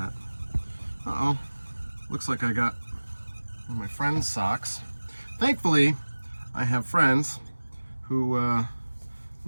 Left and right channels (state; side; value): inverted; both; correlation -1.00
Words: Uh-oh. Looks like I got one of my friend's socks. Thankfully, I have friends who